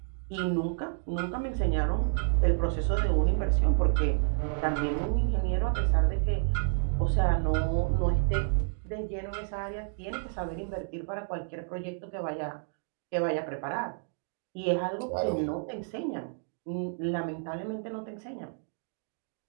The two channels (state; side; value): silent; left; digital silence